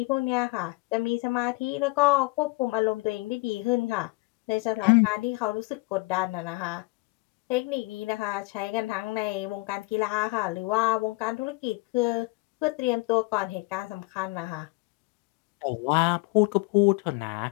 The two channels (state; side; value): quieter; right; 24.9 dB